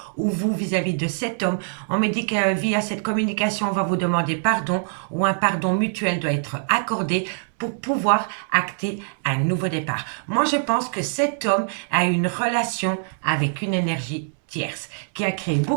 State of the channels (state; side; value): silent; left; 62 dB below the other